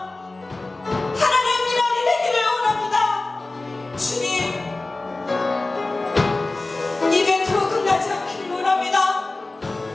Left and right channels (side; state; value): right; quieter; 3.1 dB